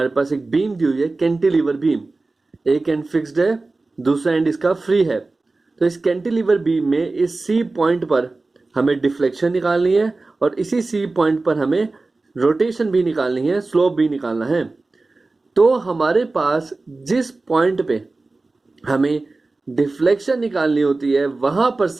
पास एक बीम दी हुई है, कैंटिलीवर बीम, एक एंड फिक्स्ड है, दूसरा एंड इसका फ्री है। तो इस कैंटिलीवर बीम में इस सी पॉइंट पर हमें डिफ्लेक्शन निकालनी है और इसी सी पॉइंट पर हमें रोटेशन भी निकालनी है, स्लोप भी निकालना है। तो हमारे पास जिस पॉइंट पे हमें डिफ्लेक्शन निकालनी होती है वहां पर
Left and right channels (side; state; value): left; quieter; 3.4 dB